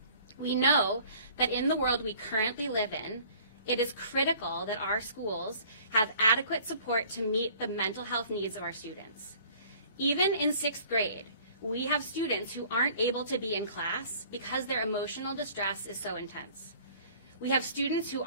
We know that in the world we currently live in, it is critical that our schools have adequate support to meet the mental health needs of our students. Even in 6th grade, we have students who aren't able to be in class because their emotional distress is so intense. We have students who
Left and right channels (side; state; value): both; inverted; correlation -0.52